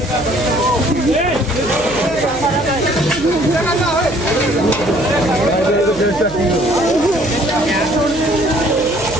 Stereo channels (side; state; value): left; noise; hum, 16 dB below the sound